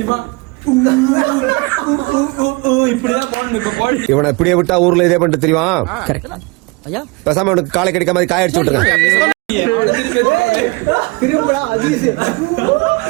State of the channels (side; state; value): left; quieter; 26.8 dB